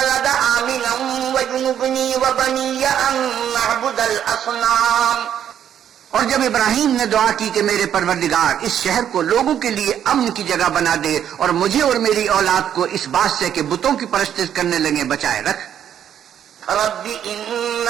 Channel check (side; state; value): left; quieter; 9.6 dB